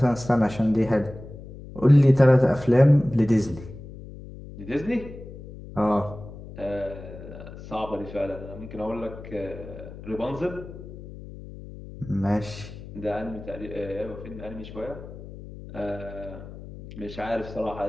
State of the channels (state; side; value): noise; left; hum, 14 dB below the sound